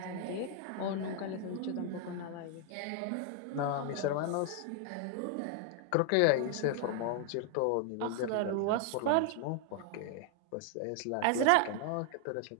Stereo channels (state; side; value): different; both; correlation 0.00